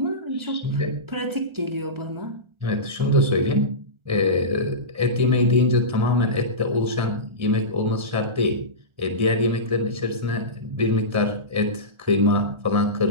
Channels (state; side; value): late; left; 1.4 ms